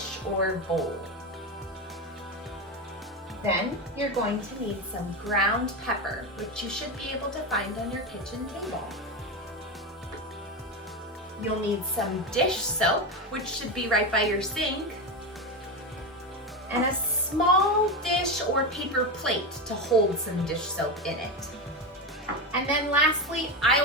or bowl. Then you're going to need some ground pepper, which you should be able to find on your kitchen table. You'll need some dish soap, which should be right by your sink, and a small dish or paper plate to hold some dish soap in it. And then lastly, I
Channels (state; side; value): normal; both; correlation 0.16